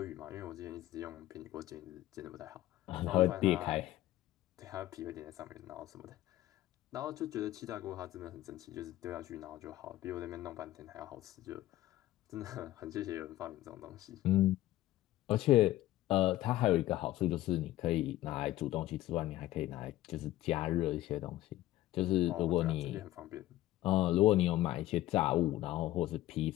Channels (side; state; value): right; quieter; 15.3 dB